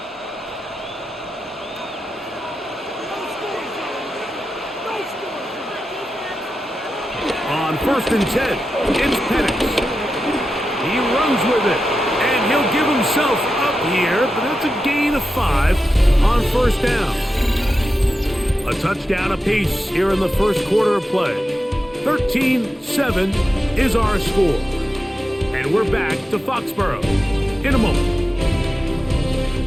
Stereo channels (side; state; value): both; normal; correlation 0.91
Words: On 1st and 10, it's Penix. He runs with it, and he'll give himself up here, but that's a gain of 5 on 1st down. A touchdown apiece here in the first quarter of play. 13-7 is our score. And we're back to Foxborough in a moment.